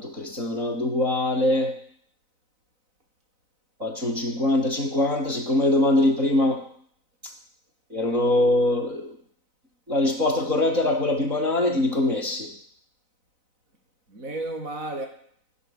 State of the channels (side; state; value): left; late; 4.0 ms